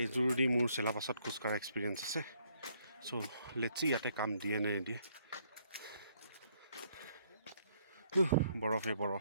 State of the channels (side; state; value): both; inverted; correlation -0.68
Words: এইযোৰ দি মোৰ চেলাপাছত খোজকাঢ়া এক্সপিৰিয়েঞ্চ আছে চ' লেটছি ইয়াতে কাম দিয়ে নে নিদিয়ে বৰফে